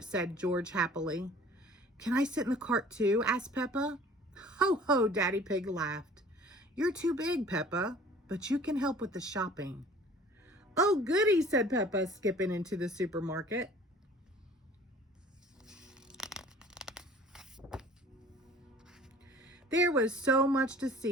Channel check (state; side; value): normal; both; correlation 0.49